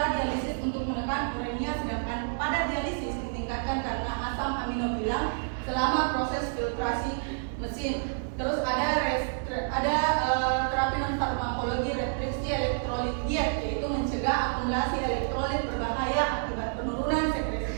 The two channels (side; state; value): left; silent; digital silence